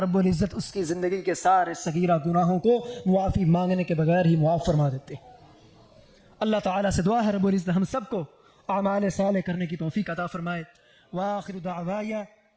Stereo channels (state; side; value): identical; both; correlation 1.00